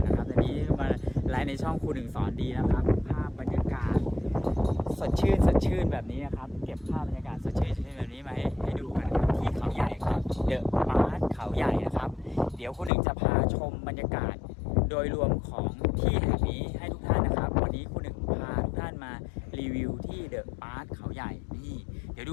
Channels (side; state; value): right; drops out; at 12.9 s